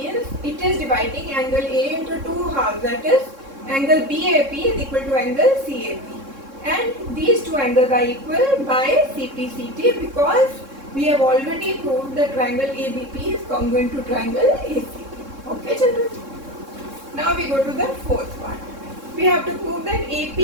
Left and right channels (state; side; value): late; left; 3.6 ms